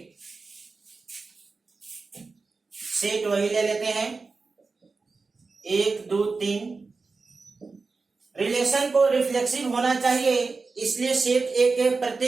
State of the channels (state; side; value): quieter; left; 4.2 dB